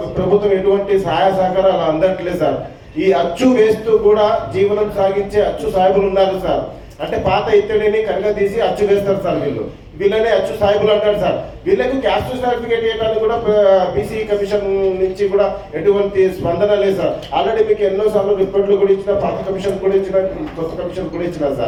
ప్రభుత్వం ఎటువంటి సహాయ సహకారాలు అందట్లేదు సార్. ఈ అచ్చు వేస్తూ కూడా జీవనం సాగించే అచ్చు సాహెబులు ఉన్నారు సార్. అంటే పాత ఇత్తడిని కనుక తీసి అచ్చు వేస్తారు సార్. వీళ్ళనే అచ్చు సాహెబులు అంటారు సార్. వీళ్ళకు క్యాస్ట్ సర్టిఫికేట్ ఇవ్వడానికి కూడా బీసీ కమిషన్ నుంచి కూడా ఎటువంటి స్పందన లేదు సార్. ఆల్రెడీ మీకు ఎన్నోసార్లు రిపోర్ట్లు కూడా ఇచ్చిన, పాత కమిషన్ కూడా ఇచ్చిన, కొత్త కమిషన్ కూడా ఇచ్చిన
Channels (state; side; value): identical; both; correlation 1.00